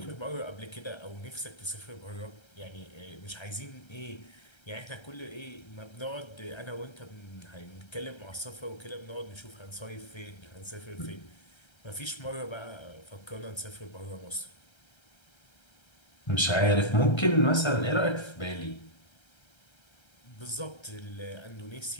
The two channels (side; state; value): right; late; 1.3 ms